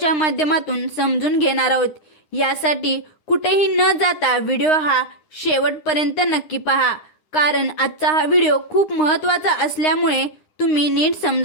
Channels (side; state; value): right; late; 9.7 ms